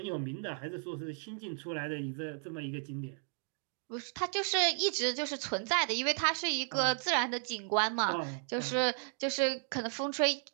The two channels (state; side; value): silent; left; 55 dB below the other